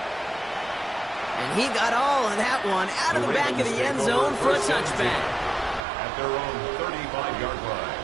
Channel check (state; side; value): drops out; left; at 5.8 s